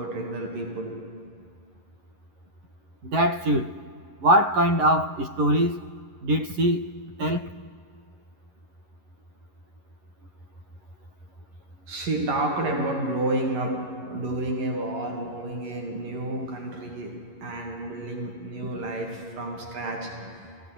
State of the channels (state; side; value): late; left; 11 ms